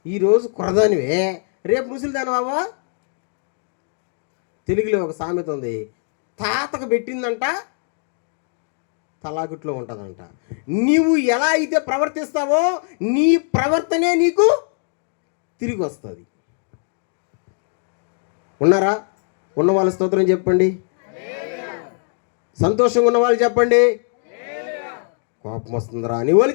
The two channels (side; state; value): right; silent; 55 dB below the other